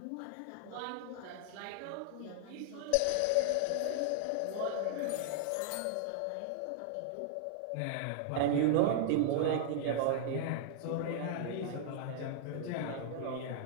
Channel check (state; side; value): different; both; correlation 0.00